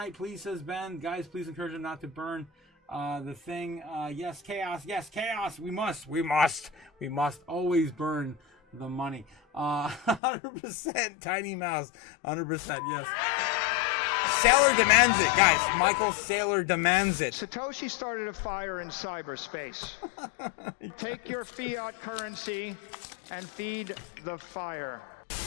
please, says Ben. Guys, please encourage them not to burn the thing. Yes, chaos. Yes, chaos. We must always burn the money. 100% Tiny Mouse. 100%. Yes. Sailor demands it, guys. Michael Sailor demands it. Satoshi started a fire in cyberspace. Take your fiat currency and feed the fire.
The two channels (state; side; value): drops out; right; at 10.2 s